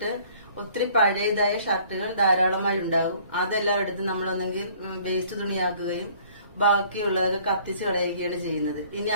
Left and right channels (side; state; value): both; inverted; correlation -0.56